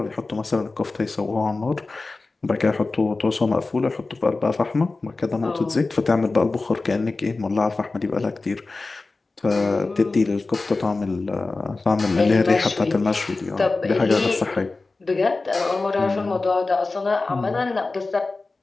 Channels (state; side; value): quieter; right; 3.6 dB